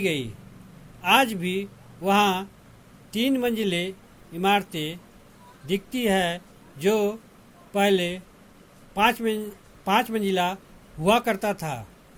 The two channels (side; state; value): both; identical; correlation 1.00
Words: आज भी वहाँ 3 मंजिले इमारतें दिखती है जो पहले 5 मंजिला हुआ करता था।